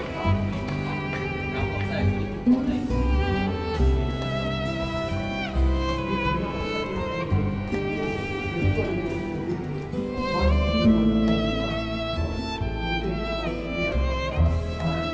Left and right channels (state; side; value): identical; both; correlation 1.00